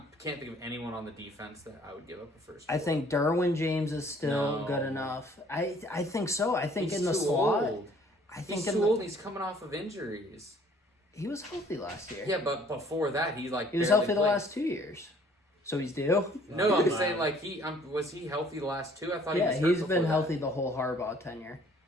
can't think of anyone on the defense that I would give up a first. I think Derwin James is still No. good enough. I think so. I think he's in the too slot. old. I think He's in too the, old. And he's coming off of injuries. he was healthy last year. Yeah, but before that, he like He was barely healthy the played. last 2 years. So he's due. No, I'm Wow. saying like he was he healthy the last 2? I thought Yeah, he was he's hurt been before healthy the whole Harbaugh tenure.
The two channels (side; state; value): both; normal; correlation 0.57